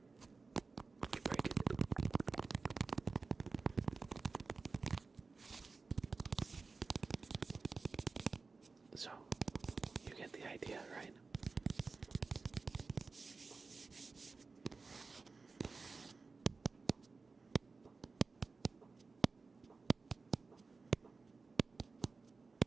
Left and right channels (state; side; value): quieter; left; 4.2 dB